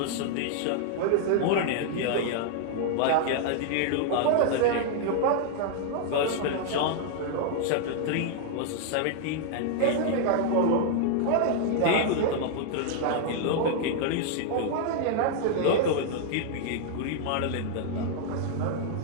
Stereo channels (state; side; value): different; both; correlation 0.00